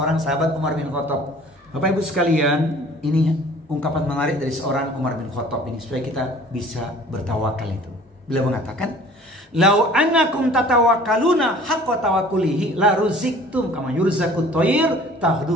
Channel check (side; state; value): both; normal; correlation 0.49